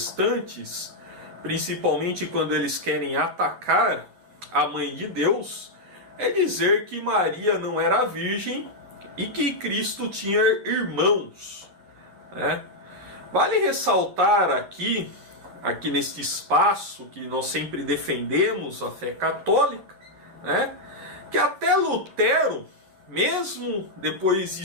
principalmente quando eles querem atacar a Mãe de Deus, é dizer que Maria não era virgem e que Cristo tinha irmãos, né? Vale ressaltar aqui neste espaço que nós sempre defendemos a fé católica, né, que até Lutero, mesmo depois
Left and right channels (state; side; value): late; left; 11 ms